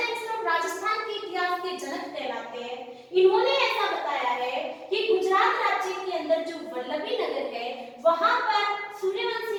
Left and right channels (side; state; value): both; identical; correlation 1.00